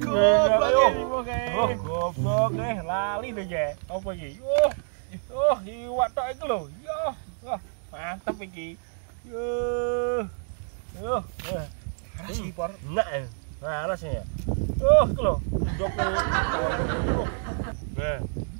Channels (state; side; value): silent; left; digital silence